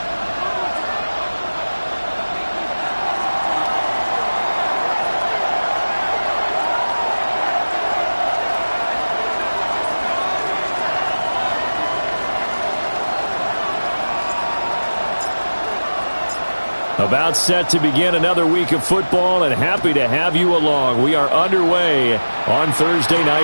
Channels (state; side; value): inverted; both; correlation -1.00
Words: About set to begin another week of football, and happy to have you along. We are underway on Thursday